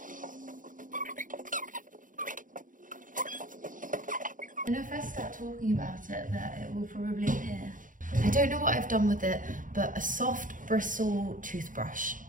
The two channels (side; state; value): left; late; 0.38 ms